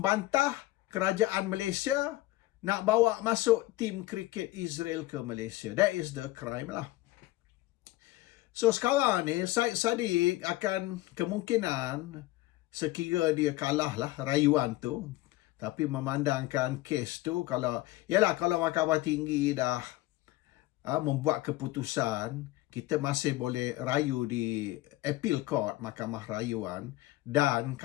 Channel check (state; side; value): quieter; right; 17.7 dB